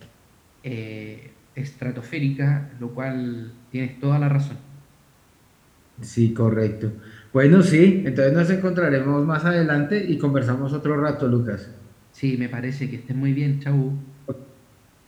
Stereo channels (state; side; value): identical; both; correlation 1.00